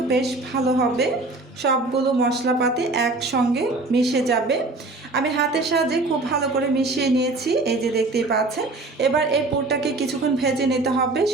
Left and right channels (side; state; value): left; quieter; 3.2 dB